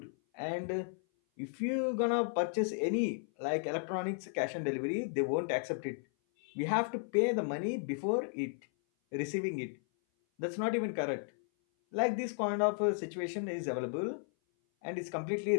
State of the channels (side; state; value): right; silent; 55 dB below the other